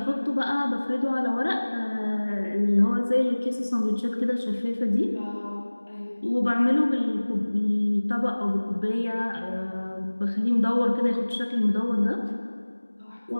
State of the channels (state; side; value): inverted; both; correlation -1.00